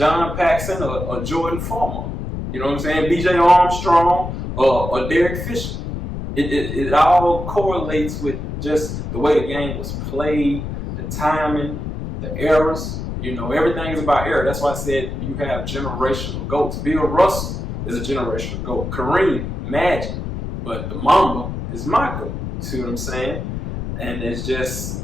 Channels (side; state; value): left; noise; rumble, 5 dB below the sound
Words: Paxson or Jordan Farmar? You know what I'm saying? B.J. Armstrong or Derek Fisher. It all correlates with just the way the game was played, the timing, the errors. You know, everything is about error. That's why I said you have generational GOATs. Bill Russell is a generational GOAT. Kareem, Magic. But the Mamba is my GOAT. You see what I'm saying? And it's